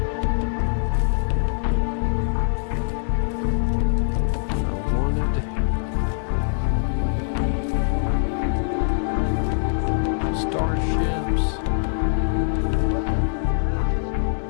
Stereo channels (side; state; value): right; silent; 58 dB below the other